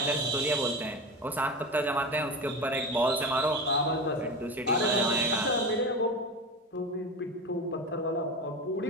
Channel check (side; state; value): both; normal; correlation 0.26